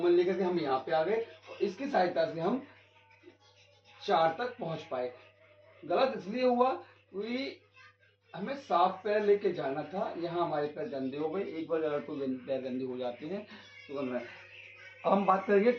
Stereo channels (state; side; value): identical; both; correlation 1.00